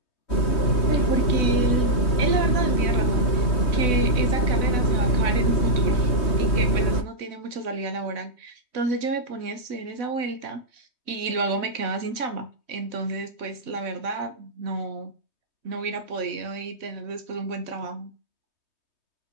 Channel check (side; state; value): right; late; 3.2 ms